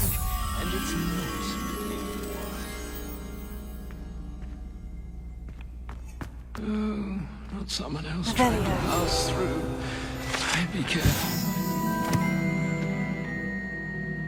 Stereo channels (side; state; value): both; identical; correlation 1.00